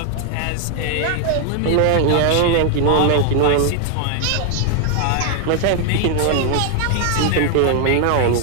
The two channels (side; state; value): both; different; correlation 0.00